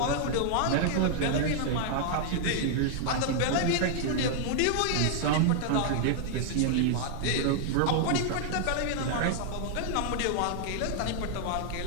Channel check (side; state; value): both; different; correlation -0.01